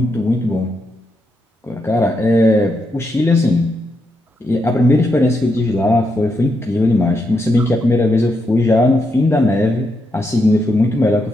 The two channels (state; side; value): normal; both; correlation 0.82